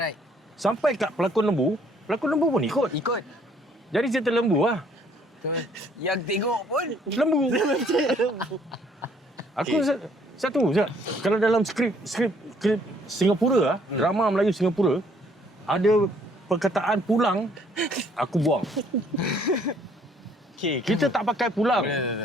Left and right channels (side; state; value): both; normal; correlation 0.63